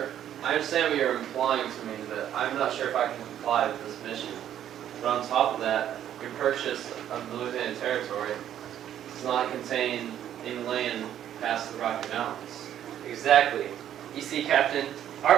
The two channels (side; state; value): left; quieter; 10.7 dB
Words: I understand what you're implying to me, but I'm not sure if I can comply with this mission. But on top of that, your purchase of the Louisiana territory does not contain any land past the Rocky Mountains. Exactly. You see, Captain,